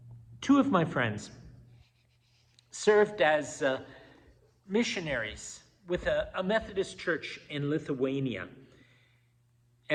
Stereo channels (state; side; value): identical; both; correlation 1.00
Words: Two of my friends served as missionaries with a Methodist church in Lithuania.